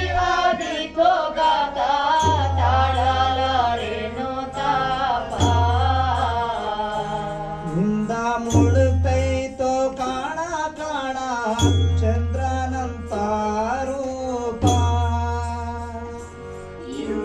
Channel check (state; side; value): identical; both; correlation 1.00